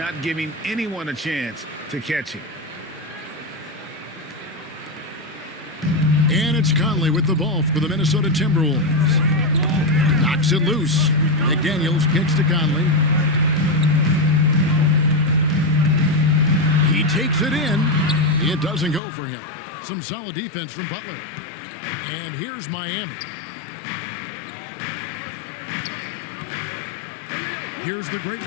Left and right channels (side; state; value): right; drops out; at 19.0 s